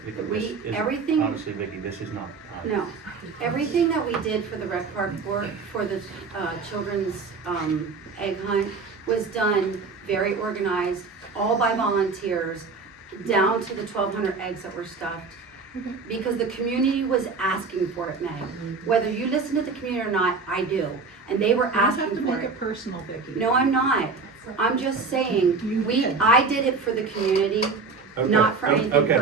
this We- is, everything- obviously, Vicky, this is not the time. No, everything that we did for the rec park for the, children's, egg hunt was done very organized, all by volunteers, down to the 1,200 eggs that were stuffed. Because the community was asking for it, Meg. Whether you listen to the community or not, I do, and they were You don't have to asking for make it. it personal, Vicky. No, I'm not. I'm just saying, You did. I did it for the community, Okay, not for anything okay,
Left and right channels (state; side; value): quieter; left; 4.5 dB